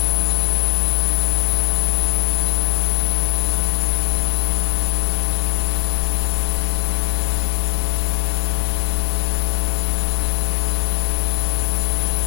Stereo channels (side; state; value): right; silent; 66 dB below the other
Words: 되면 소켓에 추가를 하면 될 거예요. 푸시를 하지 말고. 그리고